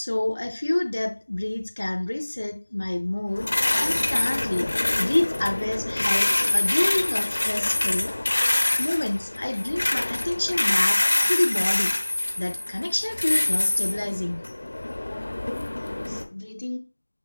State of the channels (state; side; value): inverted; both; correlation -1.00